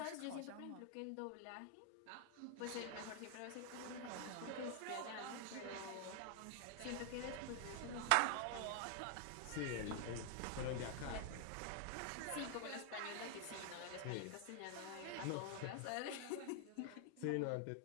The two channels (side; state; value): both; different; correlation 0.00